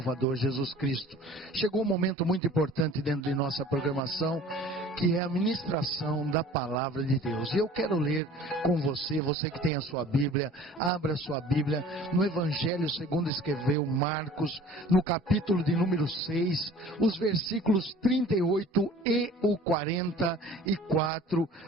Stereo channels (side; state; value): both; normal; correlation 0.47